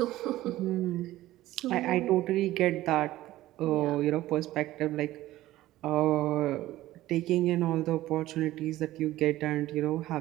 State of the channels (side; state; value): left; quieter; 15.7 dB